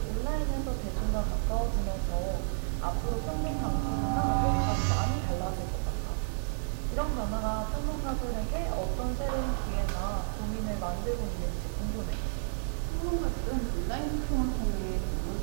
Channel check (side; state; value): left; silent; digital silence